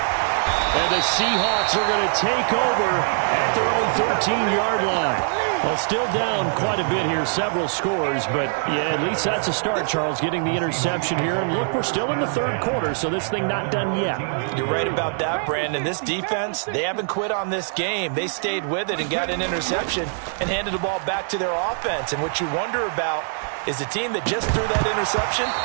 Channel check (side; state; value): left; silent; digital silence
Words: And the Seahawks are going to take over at their own 13-yard line. Well, still down quite a bit here, several scores, but yeah, at least that's a start, Charles, getting the interception here. And look, we're still in the third quarter, so this thing not done yet. You're right about that, Brandon. This defense, they haven't quit on this game. They stayed with it and got an interception and handed the ball back to their offense. And what you wonder about is the team that just threw that interception,